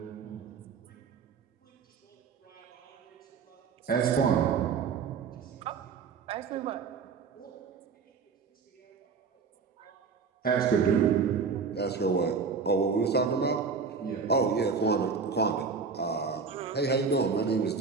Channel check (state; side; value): quieter; left; 5.4 dB